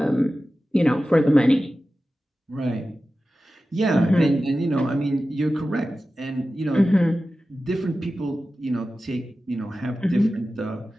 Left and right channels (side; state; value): both; normal; correlation 0.94